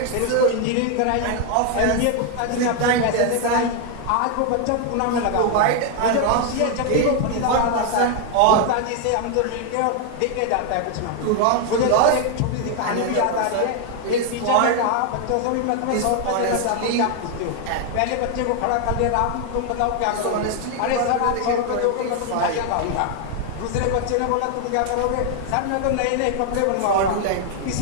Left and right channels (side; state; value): both; different; correlation 0.00